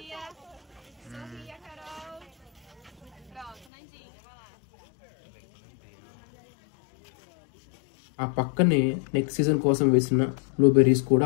ఆ పక్కనే నెక్స్ట్ సీజన్ కోసం వేసిన బ్లూబెర్రీస్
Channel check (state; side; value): drops out; right; at 3.7 s